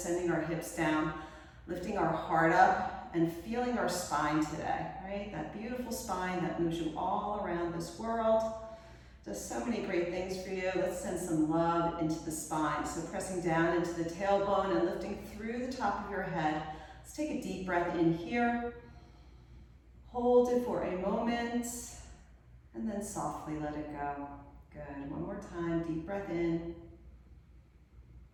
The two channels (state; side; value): identical; both; correlation 1.00